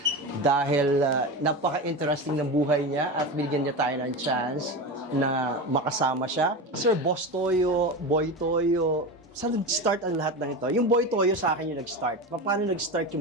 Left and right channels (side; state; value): both; normal; correlation 0.23